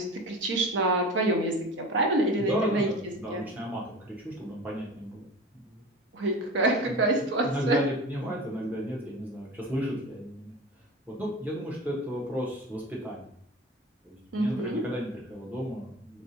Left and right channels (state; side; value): normal; both; correlation 0.34